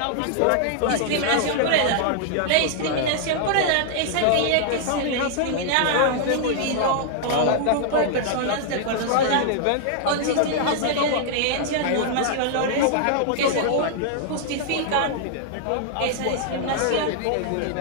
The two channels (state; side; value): different; both; correlation -0.01